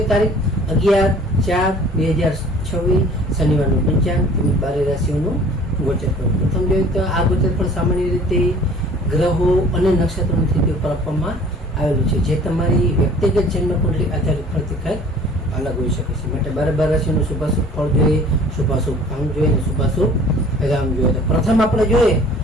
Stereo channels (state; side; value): normal; both; correlation 0.50